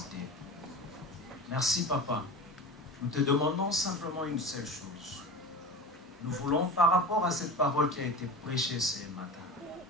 Merci, Papa. Nous te demandons simplement une seule chose. Nous voulons, par rapport à cette parole qui a été prêchée ce matin,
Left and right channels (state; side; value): normal; both; correlation 0.32